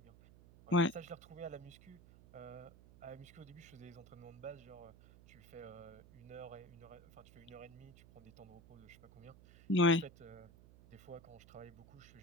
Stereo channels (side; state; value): right; noise; hum, 20 dB below the sound